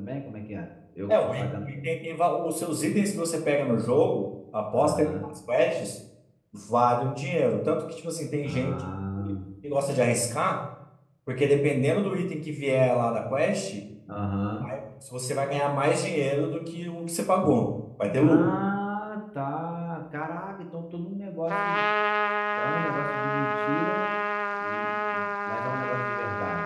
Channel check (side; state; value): both; identical; correlation 1.00